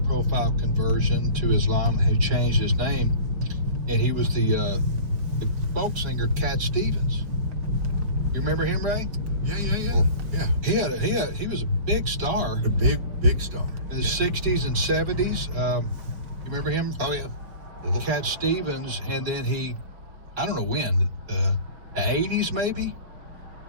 conversion to Islam who changed his name, and he was the folk singer Cat Stevens. You remember him, Ray? Yeah. He was a big star. A big star. In the 60s and 70s. You remember him? Oh, yeah. Cat Stevens, and then I don't know when, the 80s maybe,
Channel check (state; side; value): late; left; 5.6 ms